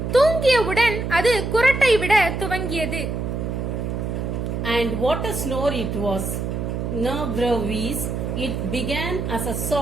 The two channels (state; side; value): noise; right; hum, 3 dB below the sound